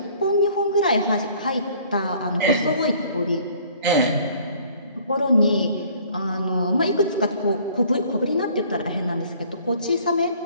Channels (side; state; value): both; inverted; correlation -0.55